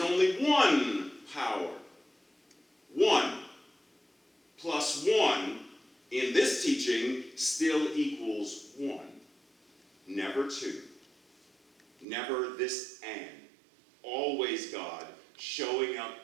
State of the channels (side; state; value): left; drops out; at 12.1 s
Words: only one power. 1 plus 1 in this teaching still equals 1. Never 2. Never this and. Always God showing up